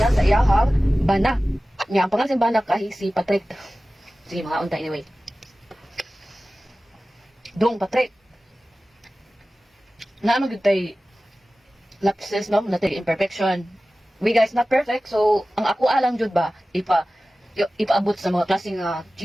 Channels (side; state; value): both; normal; correlation 0.96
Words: sa iyaha bana. Nga, ang pangalan sa bana kay si Patrick. Sige, mga unta anyway. Dong Patrick. Naano gyud tay lapses no, natay imperfection. We guys not perfect, so ang ako alang jud ba ipaabot sa mga klaseng